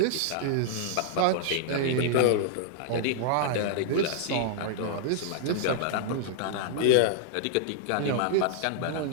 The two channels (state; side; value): different; both; correlation -0.01